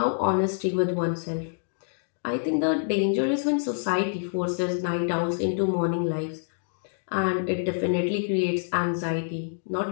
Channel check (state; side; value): silent; right; digital silence